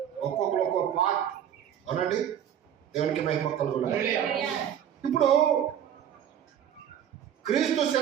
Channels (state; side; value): quieter; left; 9.6 dB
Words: ఒక్కొక్కరు ఒక్కొక్క పార్ట్. అవునండి, దేవునికి మహిమ కలుగును. ఇప్పుడు క్రీస్తు